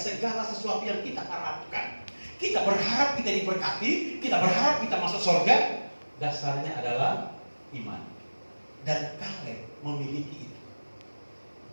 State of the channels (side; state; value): both; inverted; correlation -1.00